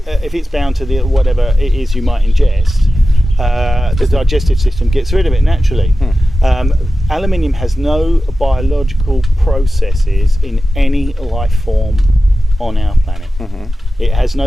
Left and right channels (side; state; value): both; normal; correlation 0.94